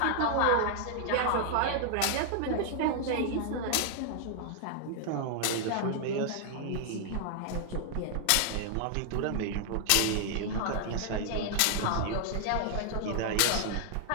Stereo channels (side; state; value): both; different; correlation 0.00